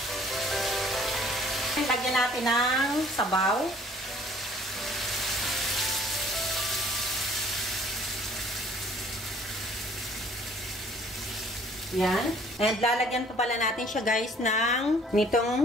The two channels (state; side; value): normal; both; correlation 0.56